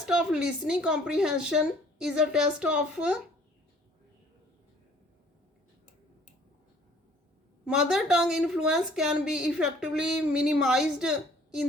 of listening comprehension is a test of mother tongue influence can be effectively minimized in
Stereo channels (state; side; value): normal; both; correlation 0.56